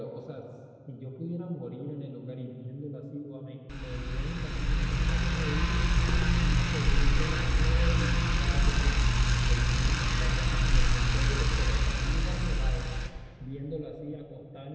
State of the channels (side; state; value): both; identical; correlation 1.00